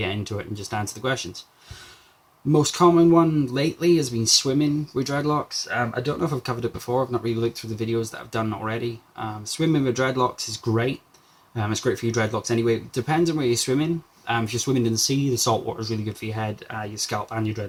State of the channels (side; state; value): both; identical; correlation 1.00